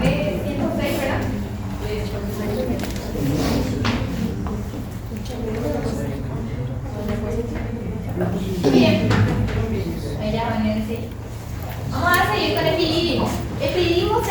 Bien. Vamos a seguir con el epidídimo. El epidídimo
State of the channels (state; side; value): identical; both; correlation 1.00